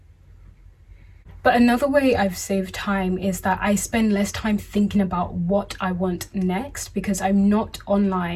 but another way I've saved time is that I spend less time thinking about what I want next, because I'm not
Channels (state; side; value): identical; both; correlation 1.00